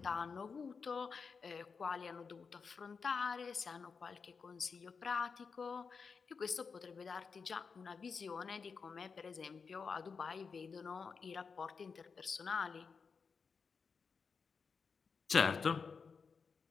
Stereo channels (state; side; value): quieter; right; 5.4 dB